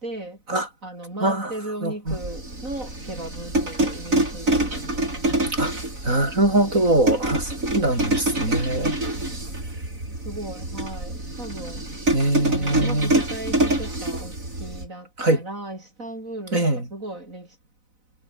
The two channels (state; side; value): late; left; 4.0 ms